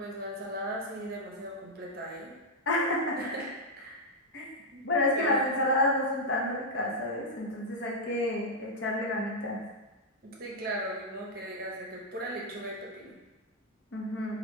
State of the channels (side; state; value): both; normal; correlation -0.02